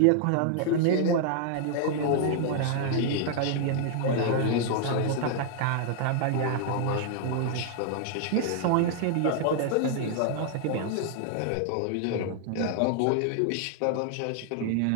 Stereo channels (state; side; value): different; both; correlation -0.01